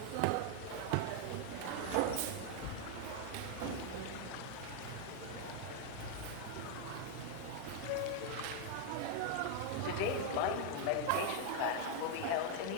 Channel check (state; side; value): different; both; correlation 0.01